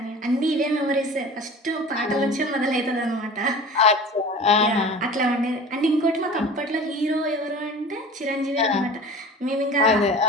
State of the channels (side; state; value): both; normal; correlation 0.39